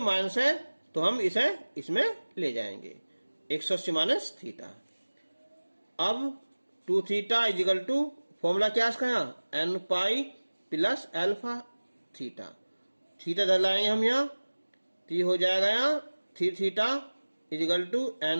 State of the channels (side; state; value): both; inverted; correlation -1.00